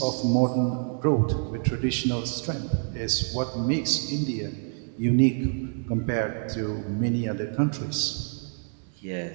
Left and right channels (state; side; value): silent; left; 56 dB below the other